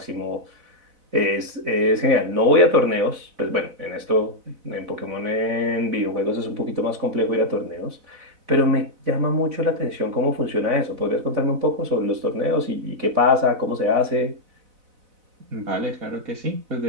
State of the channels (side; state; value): left; late; 4.0 ms